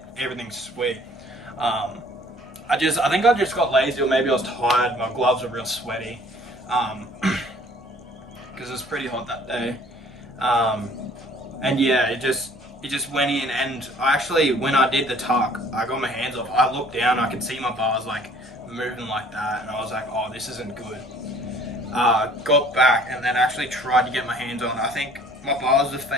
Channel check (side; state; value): both; normal; correlation 0.55